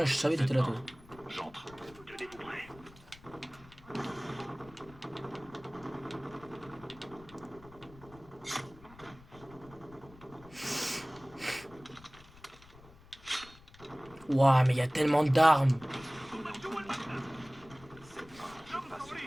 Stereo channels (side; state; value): left; noise; rumble, 22 dB below the sound